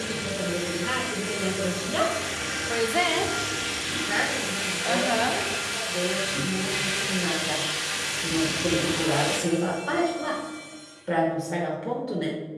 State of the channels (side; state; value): both; identical; correlation 1.00